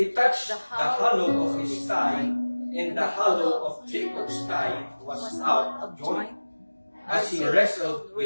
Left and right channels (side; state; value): both; inverted; correlation -1.00